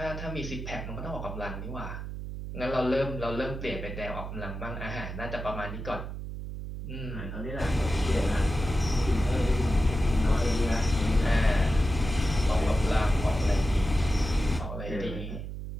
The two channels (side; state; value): right; noise; hum, 7 dB below the sound